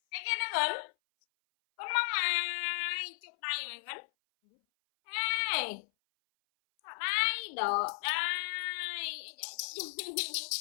Cái kia nó gần. Con mong mày, chụp đây mày gắn. Ê, ở đây, đỡ đây.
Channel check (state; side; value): silent; right; 55 dB below the other